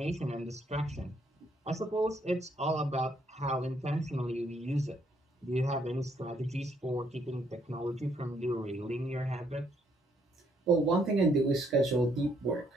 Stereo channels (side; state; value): both; normal; correlation 0.70